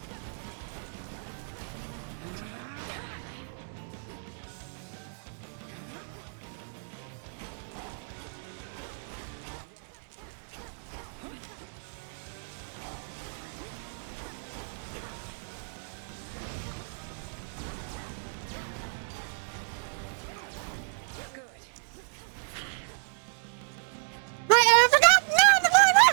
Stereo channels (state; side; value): silent; left; digital silence